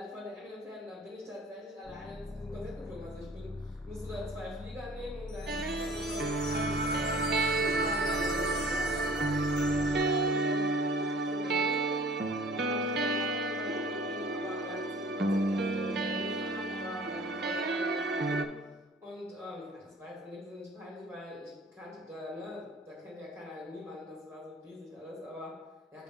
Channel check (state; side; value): normal; both; correlation 0.49